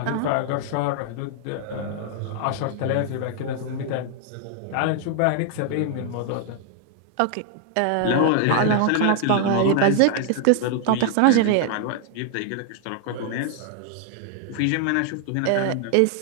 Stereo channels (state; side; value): different; both; correlation 0.00